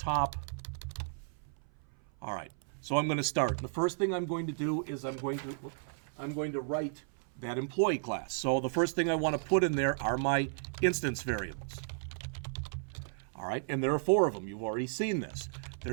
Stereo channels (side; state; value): left; silent; 55 dB below the other